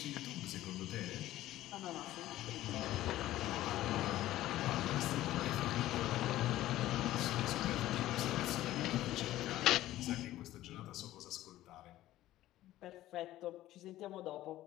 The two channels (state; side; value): quieter; right; 14.8 dB